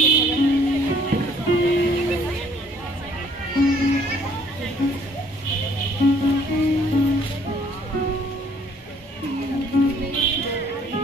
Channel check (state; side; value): normal; both; correlation 0.60